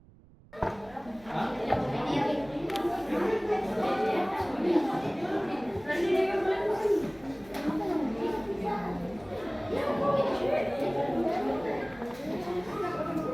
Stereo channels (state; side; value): noise; right; rumble, 24 dB below the sound